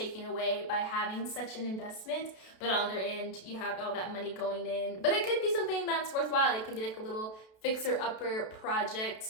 away by having such an investment. But on the other end, you have all that money going in. But it could be something that's worthwhile. It can be like a little fixer-upper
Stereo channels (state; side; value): late; right; 32 ms